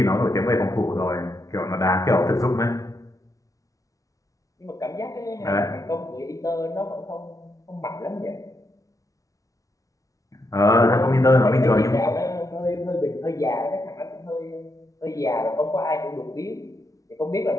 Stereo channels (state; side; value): late; right; 0.17 ms